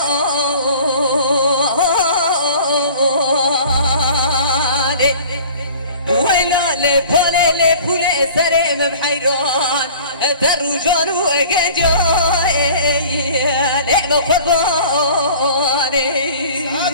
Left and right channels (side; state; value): both; inverted; correlation -0.46